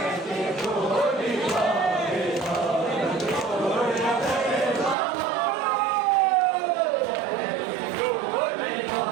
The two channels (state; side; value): drops out; left; at 5.0 s